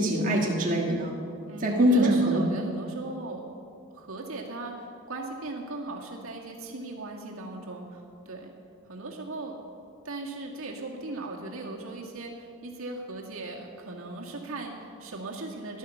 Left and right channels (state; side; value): normal; both; correlation 0.47